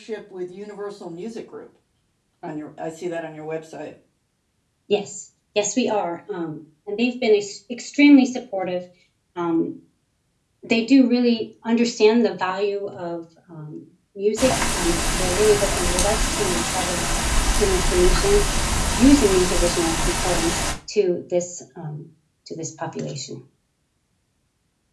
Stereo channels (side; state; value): both; identical; correlation 1.00